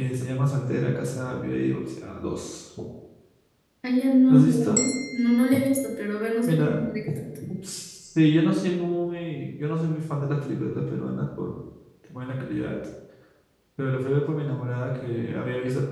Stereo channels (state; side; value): identical; both; correlation 1.00